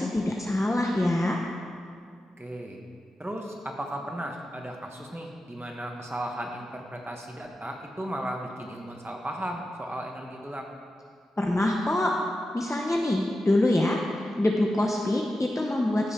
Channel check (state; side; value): normal; both; correlation 0.91